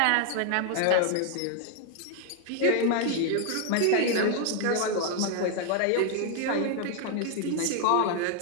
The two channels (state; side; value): different; both; correlation 0.00